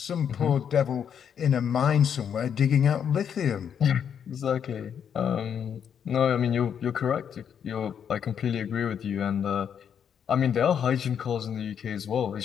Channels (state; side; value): quieter; right; 8.1 dB